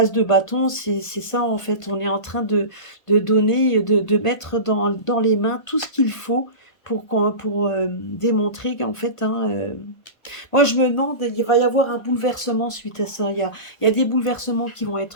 de bâton, c'est ça en fait. On est en train de donner, de mettre dans les mains tout ce qu'il faut pour démontrer qu'en fait, hein, moi je me demande, il va y avoir un bouleversement suite à ça. Il y a des bouleversements qui vont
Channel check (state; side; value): late; right; 1.5 ms